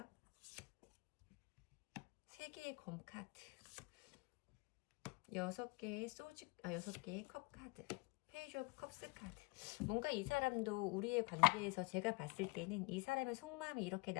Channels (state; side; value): quieter; right; 27.3 dB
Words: 3개의 검 카드, 6개의 컵 카드, 페이지 오브 컵스 카드. 뭔가 이 사람도 우리의 관계에서 제가 봤을 때는 이 사람의 속마음이 이렇게